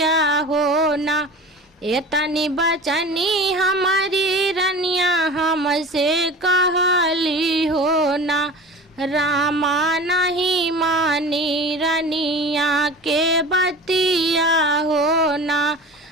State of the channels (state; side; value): normal; both; correlation 0.36